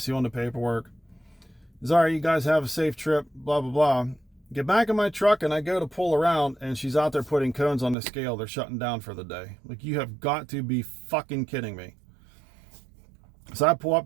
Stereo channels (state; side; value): drops out; left; at 8.0 s